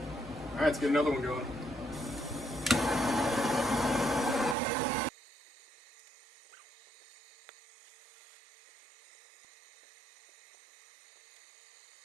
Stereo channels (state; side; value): drops out; left; at 4.5 s